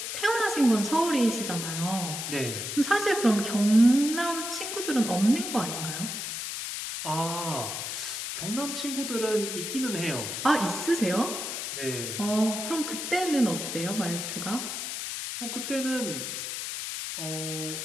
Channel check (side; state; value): left; noise; hiss, 5 dB below the sound